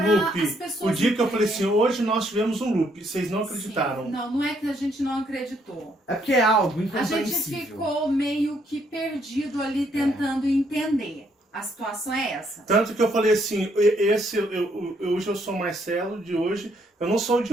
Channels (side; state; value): both; normal; correlation 0.71